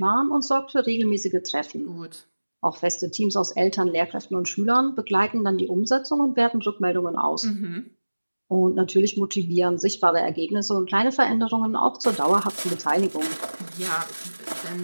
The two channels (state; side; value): inverted; both; correlation -1.00